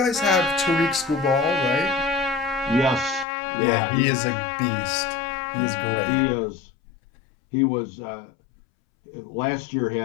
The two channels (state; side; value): drops out; right; at 3.2 s